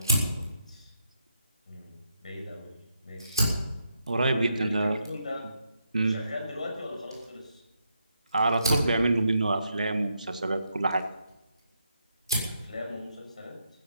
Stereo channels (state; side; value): inverted; both; correlation -0.80